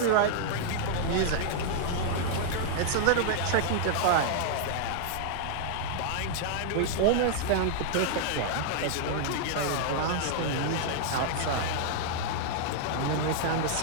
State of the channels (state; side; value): different; both; correlation -0.01